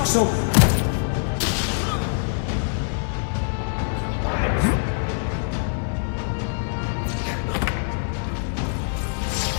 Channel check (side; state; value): right; silent; digital silence